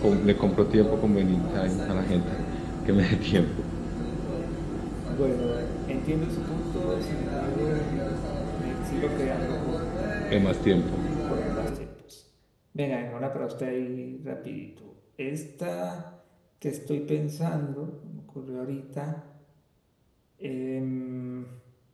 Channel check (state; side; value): identical; both; correlation 1.00